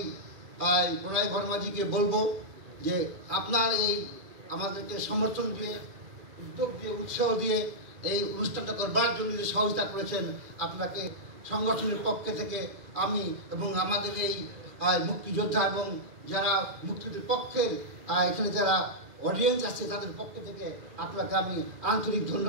প্রণয় বর্মাজিকে বলবো যে আপনার এই আমাদেরকে সমর্থন দিয়ে, উদ্যোগ দিয়ে, উৎসাহ দিয়ে এই অনুষ্ঠানটা করবার জন্য যে সহযোগিতা করেছেন, আপনাকে সংগঠনের পক্ষে থেকে আমি এবং আমাদের এই মুক্তিযোদ্ধা এবং যারা মুক্তিযুদ্ধের পক্ষের এখানে যারা অডিয়েন্স আছে তাদের পক্ষ থেকে আপনাকে আমি আন্তরিক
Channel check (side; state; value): left; late; 2.5 ms